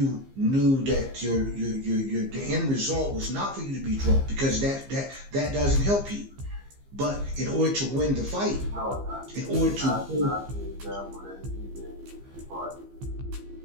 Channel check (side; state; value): left; late; 15 ms